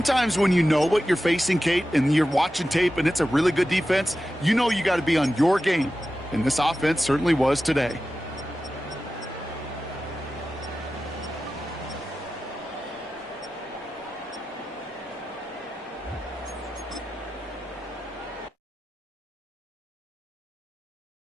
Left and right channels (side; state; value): both; normal; correlation 0.93